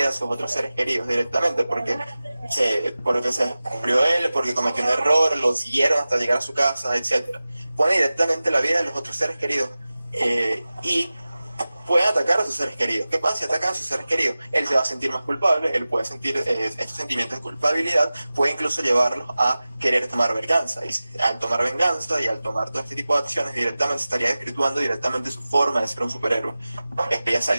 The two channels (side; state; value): both; inverted; correlation -0.96